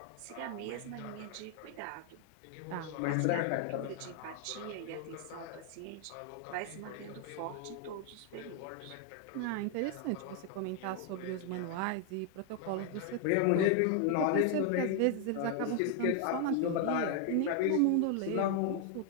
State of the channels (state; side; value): different; both; correlation 0.00